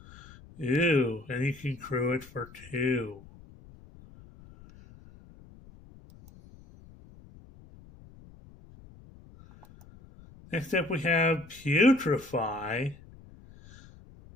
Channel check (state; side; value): noise; left; rumble, 22 dB below the sound